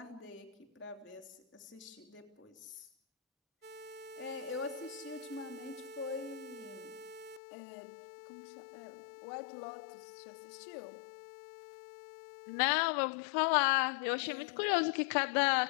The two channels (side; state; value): right; drops out; at 7.4 s